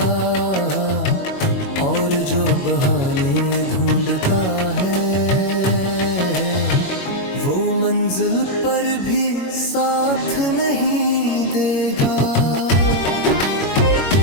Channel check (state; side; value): late; right; 21 ms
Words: और जो बहाने ढूंढता है वो मंजिल पर भी साथ नहीं देगा।